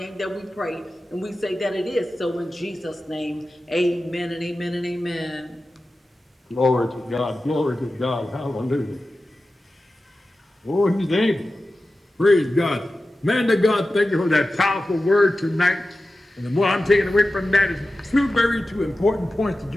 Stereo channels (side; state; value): both; normal; correlation 0.94